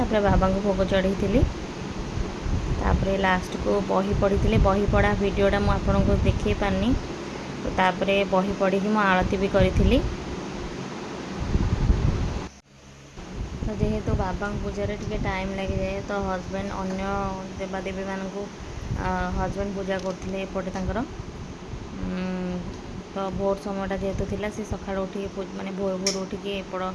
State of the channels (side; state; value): both; identical; correlation 1.00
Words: बाबा को भोग चढ़ी तापर लास्ट को बही पढ़ी बही पढ़ा वीडियोटा मुझे आपको देखे पारनी। तो तापर बही पढ़ी मु आरती भी करी। तो जेहेतु बाबा पूजा टे टाइम लगी जाए तो हजबैंड अन्य देवादेवी मान हजबैंड पूजा करते एपटे तर तो भोर समयटा जेहेतु थिला से सकाळ उठी माने भोर भोर उठिकी एपट